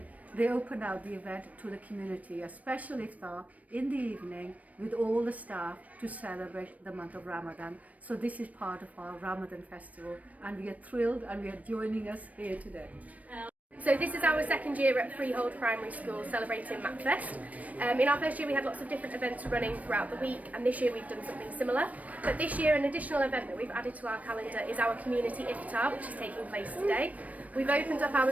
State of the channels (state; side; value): late; left; 0.070 ms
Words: they opened out the event to the community, a special iftar in the evening with all the staff to celebrate the month of Ramadan. So this is part of our Ramadan festival and we are thrilled and we are joining us here today. So this is our second year at Freehold Primary School celebrating MACFEST. In our first year we had lots of different events running throughout the week, and this year we've done something similar. But this year an additional event that we've added to our calendar is our community Iftar, which is taking place today. We've opened up our